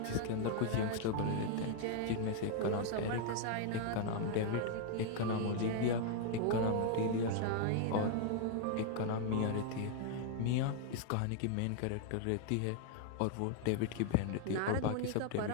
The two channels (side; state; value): both; different; correlation 0.00